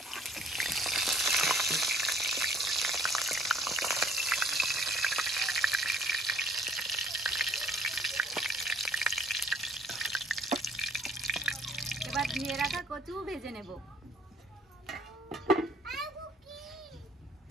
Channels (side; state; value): both; normal; correlation 0.59